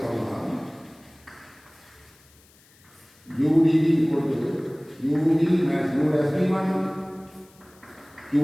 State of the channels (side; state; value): left; noise; hiss, 29 dB below the sound